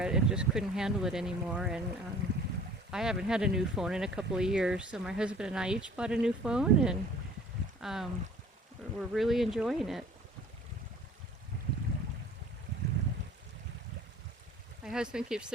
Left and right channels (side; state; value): both; normal; correlation 0.49